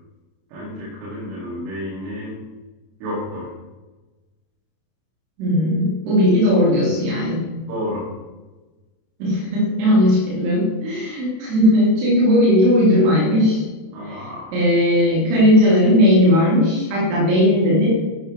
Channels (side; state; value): left; late; 32 ms